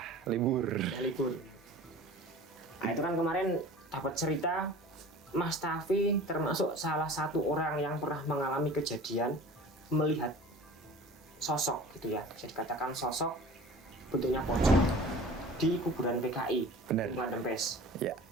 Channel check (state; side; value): normal; both; correlation 0.40